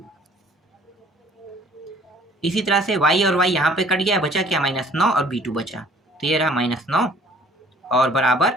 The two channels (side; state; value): both; normal; correlation 0.56